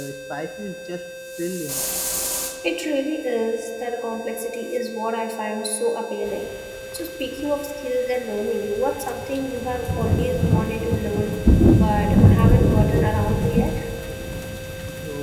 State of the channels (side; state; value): both; identical; correlation 1.00